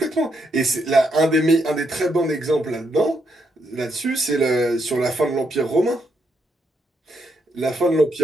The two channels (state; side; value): normal; both; correlation 0.78